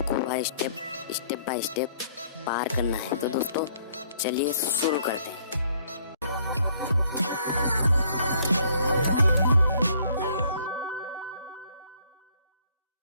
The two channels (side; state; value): both; inverted; correlation -0.63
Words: वह स्टेप बाय स्टेप पार करना है। तो दोस्तों चलिए शुरू करते हैं।